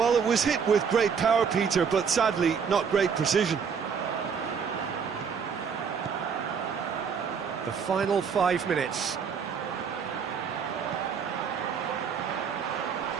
it was hit with great power, Peter, but sadly, not great precision. The final 5 minutes.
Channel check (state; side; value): quieter; left; 6.5 dB